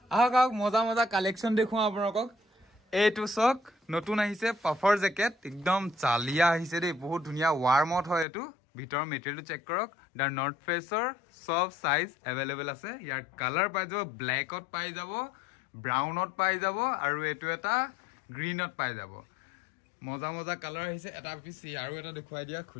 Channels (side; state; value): right; drops out; at 8.2 s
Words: আহক আহক মজা মজা কালেকশন দেখুৱা আপোনাক এইটো চক নতুন আহিছে পাফৰ জেকেট একদম চালিয়া আহিছে দেই বহুত ধুনিয়া ওয়াৰ্মত হয় এটো ভিতৰ মেটেৰিয়েলটো চেক কৰক দা নৰ্থ ফেসৰ সব সাইজ अवेलेबल আছে ইয়াৰ কালাৰ পাই যাব ব্ল্যাকত পাই যাব ব্ৰাউনত পাই যাব আৰু এটো এটা গ্ৰীনত পাই যাব মজা মজা কালাৰ আহিছে এটা পিছ আৰু এটা দেখুৱাই দিয়া